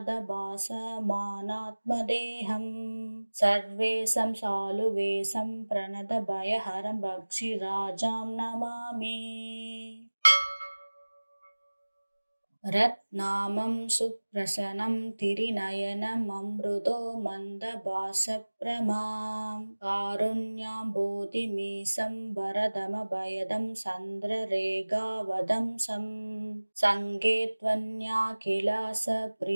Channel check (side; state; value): both; inverted; correlation -1.00